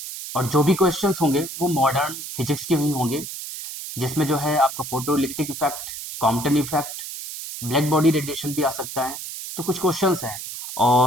और जो भी क्वेश्चंस होंगे वो मॉडर्न फिजिक्स के ही होंगे, जिसमें जो है आपका photo electric effect, Compton effect, black body radiation भी आ सकता है। तो कुछ क्वेश्चंस हैं।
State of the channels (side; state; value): right; noise; hiss, 9 dB below the sound